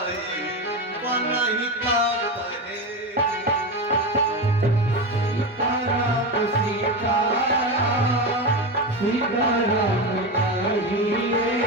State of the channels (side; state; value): both; normal; correlation 0.18